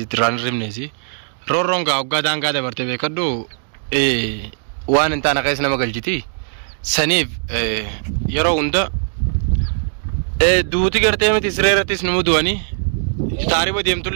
tiraan rimneesi roorroon gaa waggaa daangaa dabarte beekadhu waan hin taane keessa nama galchiti saniif yeroo hunda duuti gartee miti siree irrattis nu mudu'anii taariba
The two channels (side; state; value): left; silent; digital silence